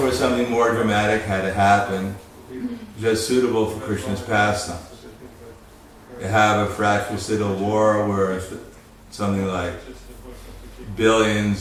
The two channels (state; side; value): identical; both; correlation 1.00